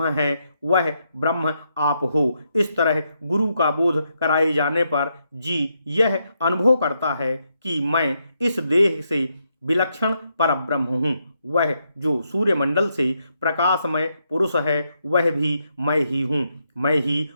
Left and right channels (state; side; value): inverted; both; correlation -0.80